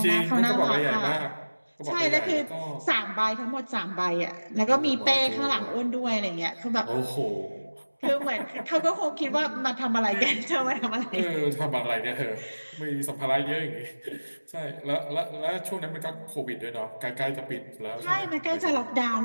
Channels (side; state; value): both; inverted; correlation -1.00